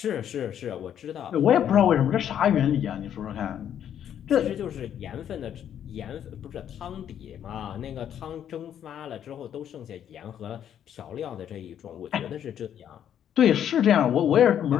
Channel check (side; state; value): right; quieter; 9.7 dB